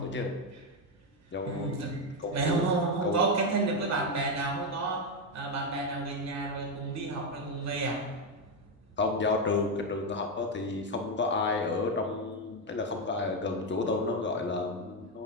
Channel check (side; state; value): both; normal; correlation 0.06